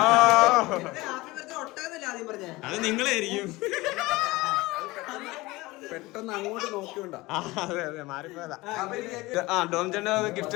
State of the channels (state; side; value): quieter; right; 20.9 dB